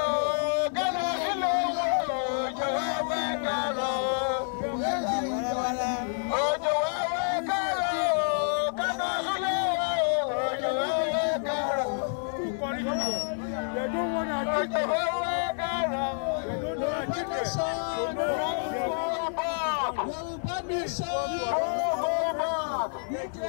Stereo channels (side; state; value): right; silent; 59 dB below the other